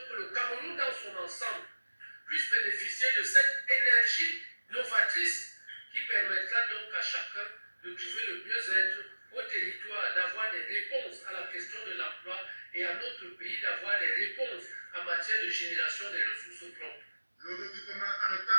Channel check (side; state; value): both; inverted; correlation -1.00